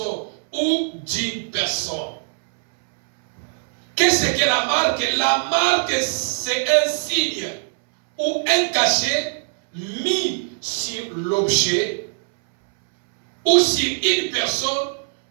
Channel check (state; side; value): silent; left; 65 dB below the other